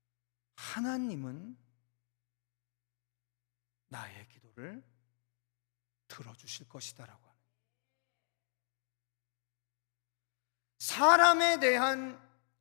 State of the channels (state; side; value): silent; right; digital silence